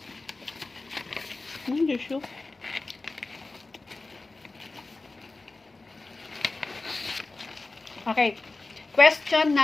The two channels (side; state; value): right; quieter; 3.4 dB